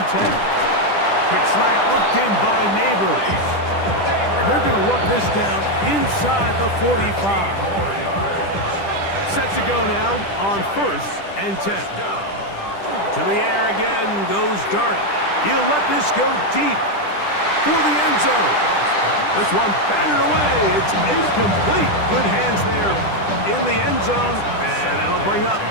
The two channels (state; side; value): late; right; 10 ms